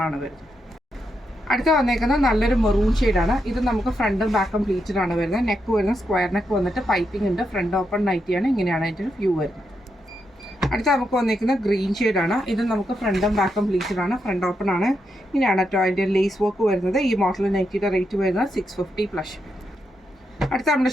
ആണ് വരുന്നത്. അടുത്ത വന്നേക്കുന്നത് നല്ലൊരു മെറൂൺ ഷെയ്ഡാണ്. ഇത് നമുക്ക് ഫ്രണ്ടും ബാക്കും പ്ലീറ്റഡ് ആണ് വരുന്നത്. നെക്ക് വരുന്നത് സ്ക്വയർ നെക്ക് വന്നിട്ട് പൈപ്പിംഗ് ഉണ്ട്. ഫ്രണ്ട് ഓപ്പൺ നൈറ്റിയാണ്. ഇങ്ങനെയാണ് അതിൻ്റെ ഒരു വ്യൂ വരുന്നത്. അടുത്ത നമുക്ക് വന്നേക്കുന്നത് ഗ്രീൻ ഷെയ്ഡാണ്. ഇത് നമുക്ക് ഫ്രണ്ടും ബാക്കും പ്ലീറ്റഡ് ആണ്. ഫ്രണ്ട് ഓപ്പൺ ആണ്. ഇങ്ങനെയാണ് കേട്ടോ അതിൻ്റെ ലേസ് വർക്ക് വരുന്നത്. ഈ മോഡൽ നൈറ്റിയുടെ റേറ്റ് വരുന്നത് 650 പ്ലസ്. അടുത്ത നമ്മുടെ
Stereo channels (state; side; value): normal; both; correlation 0.83